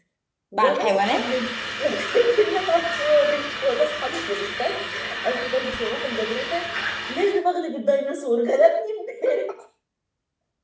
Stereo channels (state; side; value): identical; both; correlation 1.00